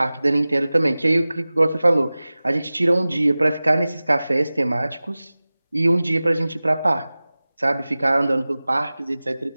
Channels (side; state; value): both; inverted; correlation -0.98